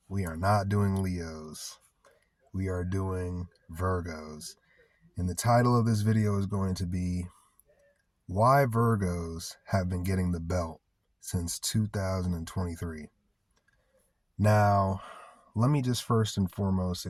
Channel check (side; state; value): both; identical; correlation 1.00